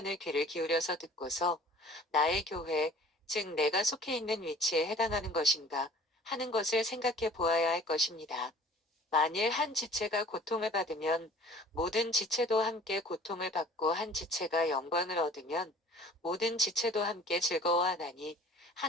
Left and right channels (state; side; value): normal; both; correlation 0.49